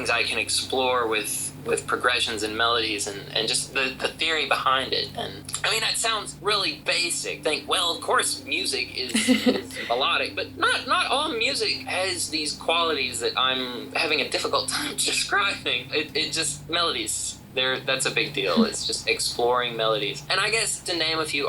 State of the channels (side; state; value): both; identical; correlation 1.00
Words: I can explore with progressions and melodies, and just the theory behind it. And I mean, that sounds really basic. Of course music is melodic, but not all music has these qualities that I'm having a difficult time describing. It just melodies that's a big deal. It's just exploring melodies. And I guess to name a few